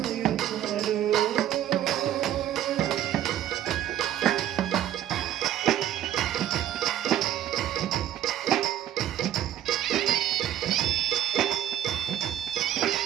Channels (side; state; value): left; quieter; 11.6 dB